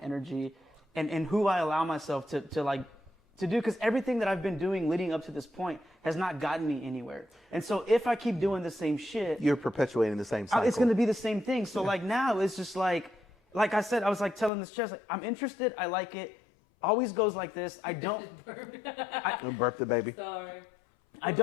and who I allow myself to do, because everything that I've been doing leading up to this point has not gotten me anywhere. And so if I keep doing the same shit, You're perpetuating the same cycle. it's going to be the same thing. So like now it's just like I said, I was like telling this chest, like, I'm interested, I like it, always goes like this. I don't And burp the baby. Sorry. I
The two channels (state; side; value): drops out; right; at 14.5 s